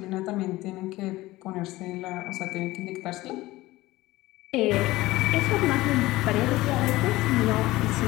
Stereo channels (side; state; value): right; quieter; 18.3 dB